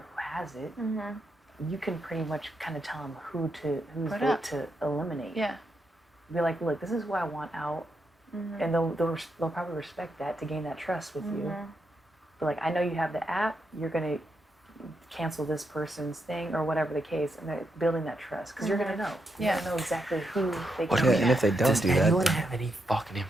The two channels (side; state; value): both; normal; correlation 0.82